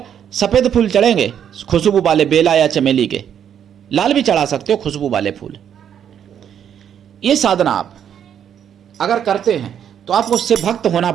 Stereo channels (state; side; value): quieter; left; 9.0 dB